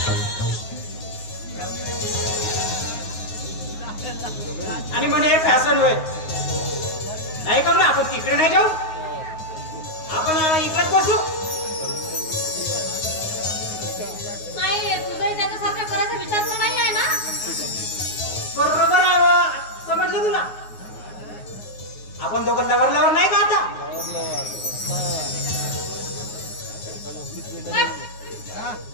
आणि म्हणे हे फॅशन होय. नाही का आपण तिकडे नाही जाऊ, आपण इकडेच बसू. नाही तुझंही त्याच्यासारखं करायचा विचार तर नाही आहे ना? बरोबर आहे. समजलं तुला? आपण दोघं लवर नाही का आता?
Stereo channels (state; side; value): late; right; 9.5 ms